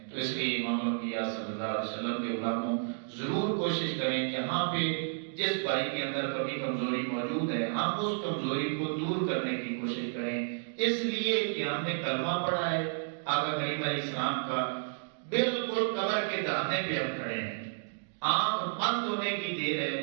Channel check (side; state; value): left; silent; digital silence